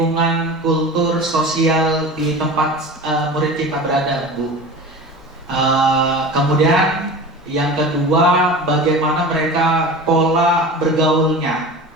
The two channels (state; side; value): normal; both; correlation 0.34